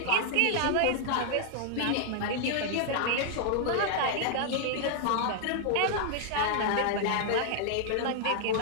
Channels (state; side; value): different; both; correlation -0.01